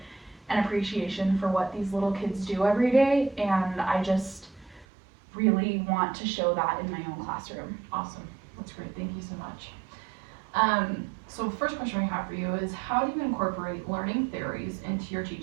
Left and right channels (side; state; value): left; drops out; at 4.9 s